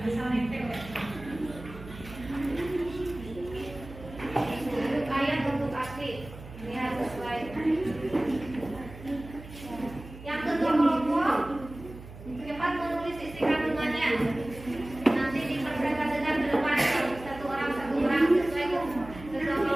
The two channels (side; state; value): right; noise; hum, 15 dB below the sound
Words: Asal nempel ya. Untuk ayat bentuk asli lihat sesuai. Yang kedua kelompok cepat menulis isi kandungannya. Nanti dipresentasikan ke depan satu orang sesuai